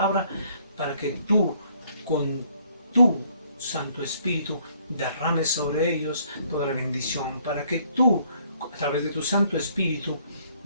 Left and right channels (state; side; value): inverted; both; correlation -0.64